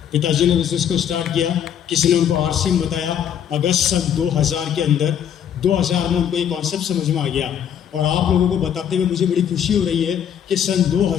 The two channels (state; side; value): quieter; right; 9.1 dB